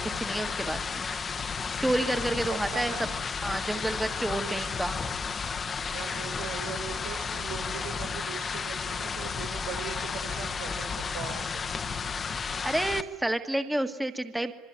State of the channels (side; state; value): both; normal; correlation 0.86